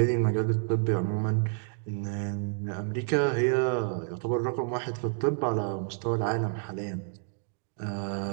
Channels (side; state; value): left; silent; digital silence